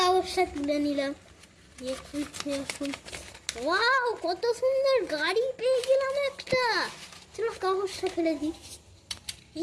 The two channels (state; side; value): identical; both; correlation 1.00